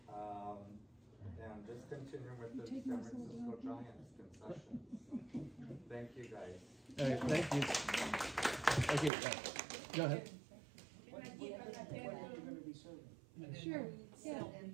And just continuing with the San Francisco Giants concessions. Thank you, guys. All right, thank you. Thank you. Go ahead. Sure. Yeah.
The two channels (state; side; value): drops out; left; at 9.1 s